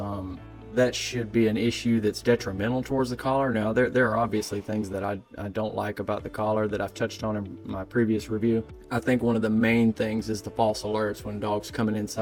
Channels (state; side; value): identical; both; correlation 1.00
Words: that should be an issue that's detrimental towards the collar. Now, there are obviously things that I don't like about the collar that I've touched on in my previous review. I think one of the main things is the false alerts when dog's coming